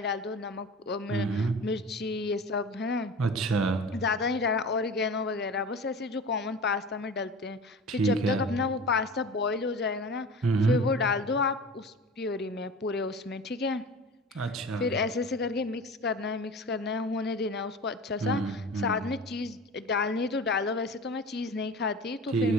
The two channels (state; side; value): normal; both; correlation 0.35